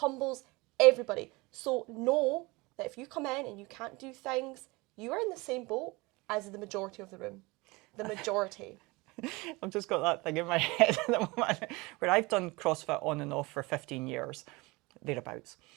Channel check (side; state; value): left; quieter; 24.0 dB